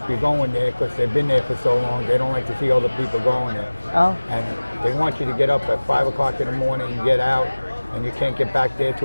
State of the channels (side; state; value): both; inverted; correlation -1.00